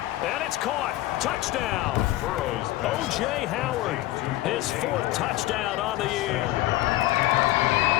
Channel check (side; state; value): right; quieter; 16.6 dB